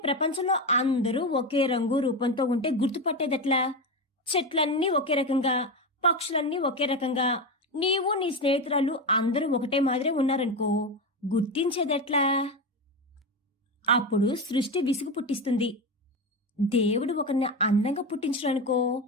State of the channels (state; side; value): normal; both; correlation 0.17